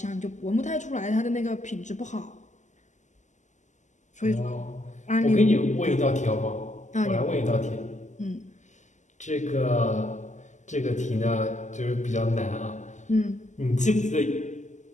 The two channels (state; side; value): late; right; 0.34 ms